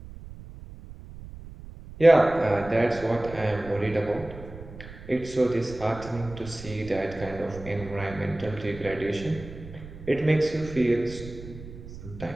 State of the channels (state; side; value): noise; right; rumble, 14 dB below the sound